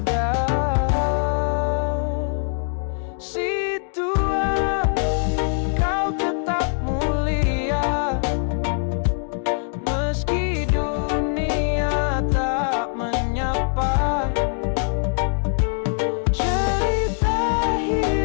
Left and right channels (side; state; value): right; silent; digital silence